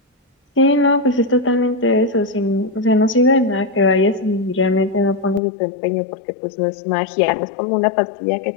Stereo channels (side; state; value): right; drops out; at 5.4 s